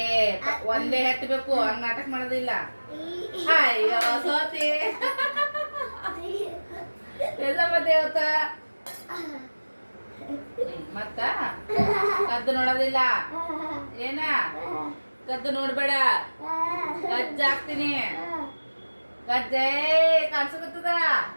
ಒಂದೇ ಹತ್ತಬೇಕು, ಹಂಗ ನಾಟಕ ಮಾಡೋದಿಲ್ಲ. ಅಯ್ಯೋ ಸೋತಿ ದೇವತ ಮತ್ತ ಕದ್ದು ನೋಡೋದಿಲ್ಲ. ಏನ ಕದ್ದು ನೋಡ್ಬೇಡ, ಕಜ್ಜ ಹಾಕ್ತೀನಿ. ಕಜ್ಜೆ ಕಾಣಿಸಕತ್ತದ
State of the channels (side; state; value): both; inverted; correlation -1.00